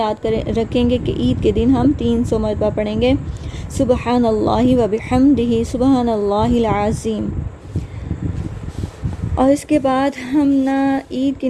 رکھیں گے کہ عید کے دن ہم 300 مرتبہ پڑھیں گے سبحان اللہ و بحمدہ سبحان اللہ العظیم۔ اور اس کے بعد ہم عید کی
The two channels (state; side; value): identical; both; correlation 1.00